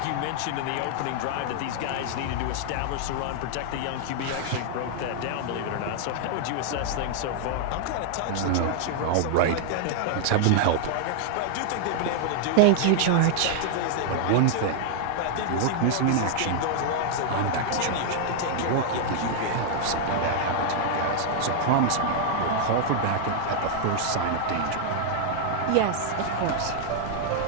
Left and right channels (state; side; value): different; both; correlation 0.00